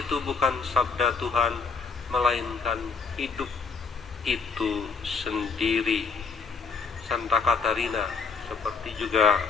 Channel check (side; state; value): right; quieter; 4.8 dB